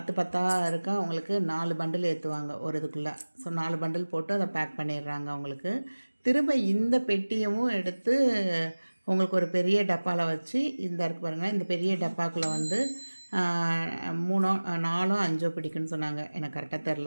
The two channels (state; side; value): inverted; both; correlation -1.00